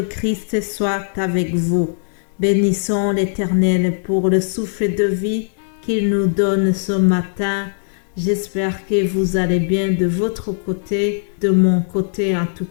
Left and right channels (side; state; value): right; silent; digital silence